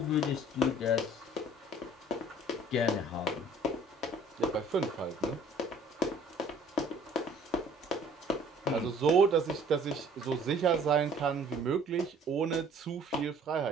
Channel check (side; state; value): both; normal; correlation 0.53